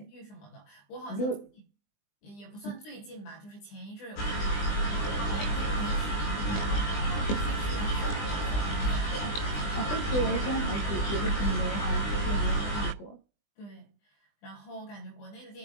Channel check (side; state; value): right; late; 20 ms